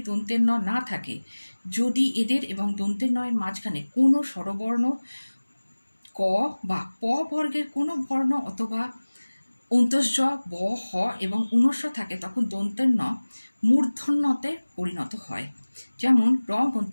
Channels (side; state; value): both; inverted; correlation -1.00